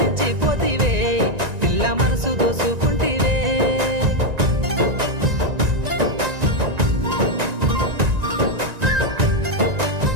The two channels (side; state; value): left; late; 1.9 ms